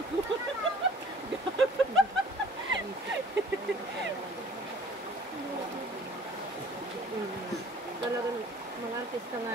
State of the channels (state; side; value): normal; both; correlation 0.51